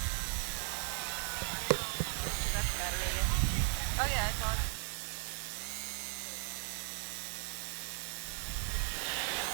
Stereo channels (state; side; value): silent; left; 53 dB below the other